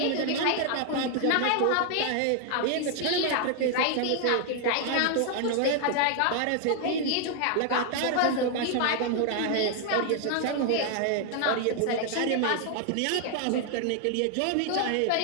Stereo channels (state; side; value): different; both; correlation 0.00